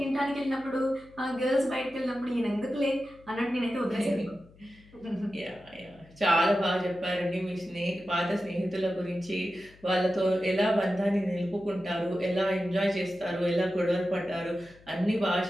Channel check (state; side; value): noise; left; hum, 25 dB below the sound